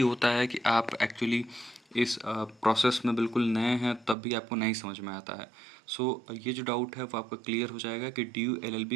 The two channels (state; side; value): drops out; left; at 4.2 s